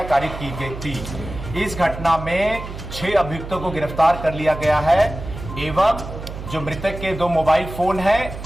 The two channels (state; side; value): noise; right; hum, 10 dB below the sound